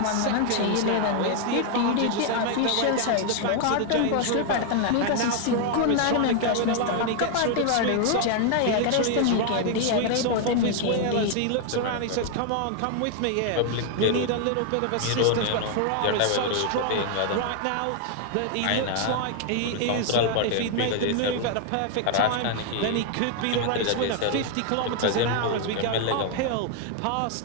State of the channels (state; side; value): different; both; correlation 0.00